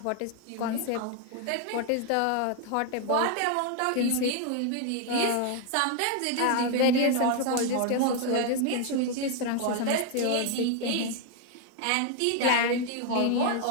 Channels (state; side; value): different; both; correlation 0.01